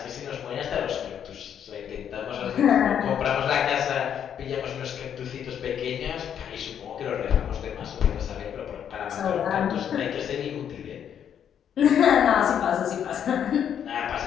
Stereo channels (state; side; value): quieter; right; 8.9 dB